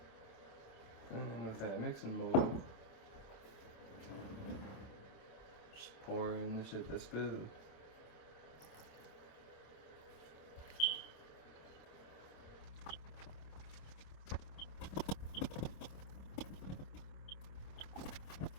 And with that mixing bowl, just pour in the shit that's good.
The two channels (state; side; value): late; right; 27 ms